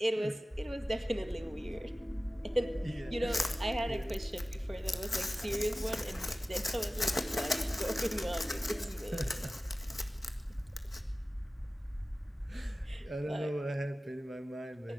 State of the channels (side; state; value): both; normal; correlation 0.96